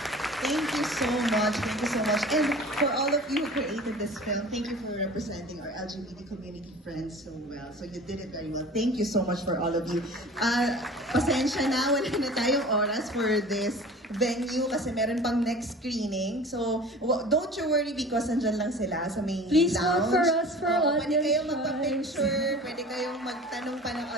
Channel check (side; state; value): both; normal; correlation 0.41